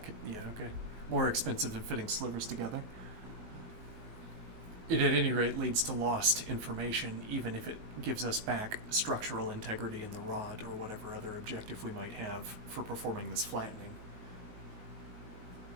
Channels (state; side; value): late; left; 19 ms